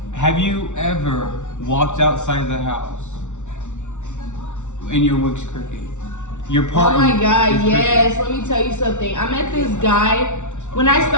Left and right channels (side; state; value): right; late; 0.84 ms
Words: Have you ever walked outside the house and your wig's crooked? Your partner. Oh my God, is yes. Let me tell you something. I met this guy when I